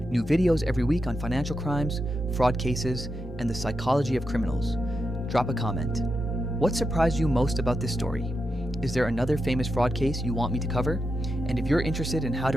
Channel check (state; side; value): normal; both; correlation 0.86